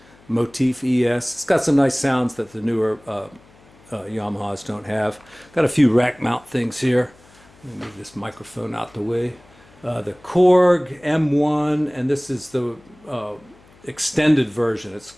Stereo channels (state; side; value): noise; left; hum, 28 dB below the sound